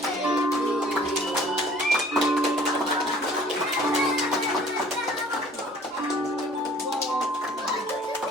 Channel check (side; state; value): both; normal; correlation 0.53